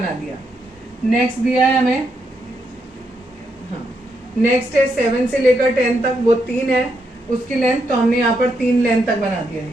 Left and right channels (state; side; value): normal; both; correlation 0.80